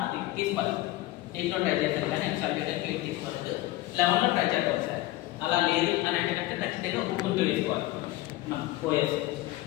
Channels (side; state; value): right; quieter; 17.2 dB